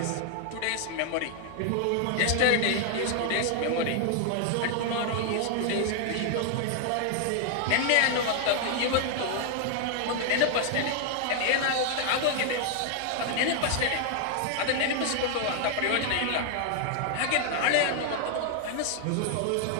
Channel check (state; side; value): different; both; correlation 0.00